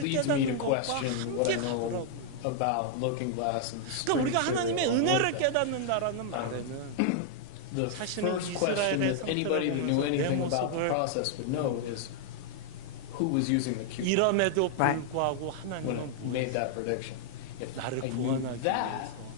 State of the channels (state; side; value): different; both; correlation -0.01